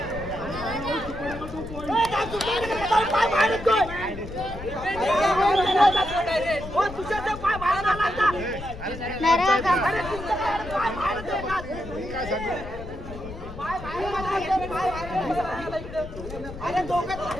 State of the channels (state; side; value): noise; left; rumble, 11 dB below the sound